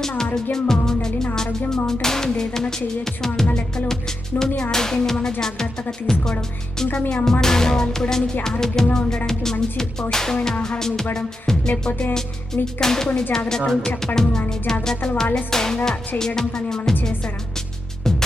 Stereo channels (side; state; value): both; normal; correlation 0.88